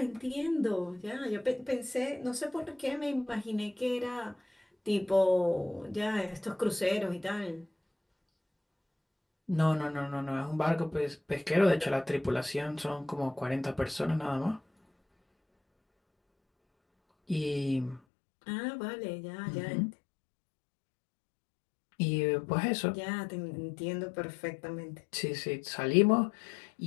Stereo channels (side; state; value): right; drops out; at 18.0 s